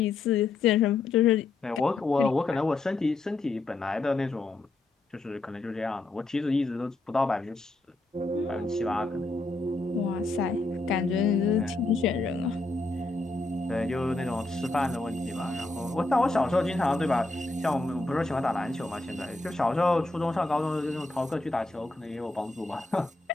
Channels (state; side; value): quieter; right; 3.2 dB